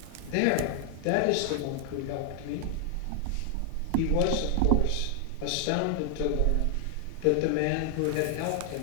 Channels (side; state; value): both; different; correlation 0.00